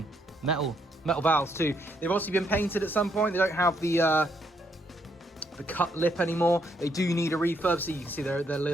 Metal valves too. They've obviously been painted at some point. They don't have the cut lip anymore. They do need a refurb, so you can see they're a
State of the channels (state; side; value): normal; both; correlation 0.74